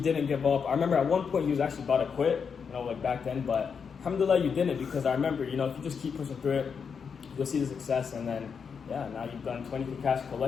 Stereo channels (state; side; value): quieter; right; 6.3 dB